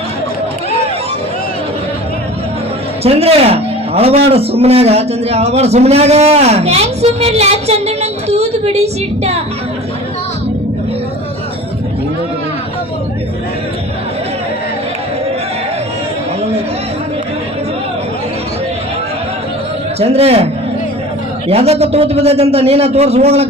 ಚಂದ್ರ ಅಳಬಾಡ ಸುಮ್ಮನಾಗ ಚಂದ್ರ ಅಳಬಾಡ ಸುಮ್ಮನಾಗ ಹೆಂಗ್ ಸುಮ್ಮನಿರ್ಲ ಚಂದ್ರ ನಂಗೆ ತೂತು ಬಿಡಿಸಿಟ್ಟ ಚಂದ್ರ ಯಾವ್ದಕ್ಕ ತೂತ್ ಬಿದ್ದೈತಂತ ನೀನ ತೋರ್ಸ್ ಹೋಗ್ಲ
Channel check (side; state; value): both; normal; correlation 0.40